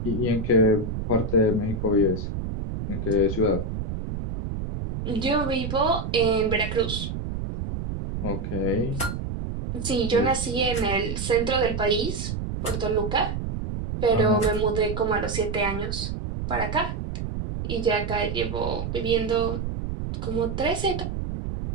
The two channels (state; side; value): noise; right; rumble, 4 dB below the sound